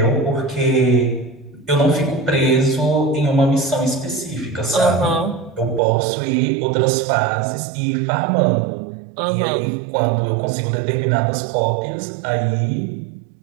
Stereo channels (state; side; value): drops out; left; at 5.8 s